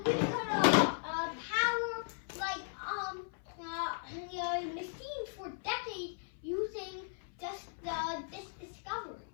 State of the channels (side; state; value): right; silent; 53 dB below the other